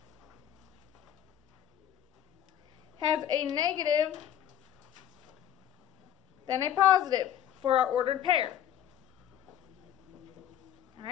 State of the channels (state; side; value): quieter; right; 10.5 dB